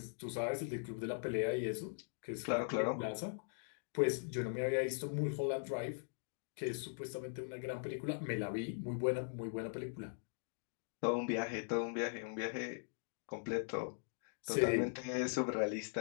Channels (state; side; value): silent; right; digital silence